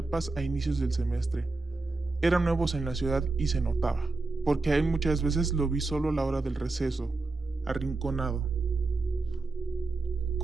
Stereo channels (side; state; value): left; quieter; 3.4 dB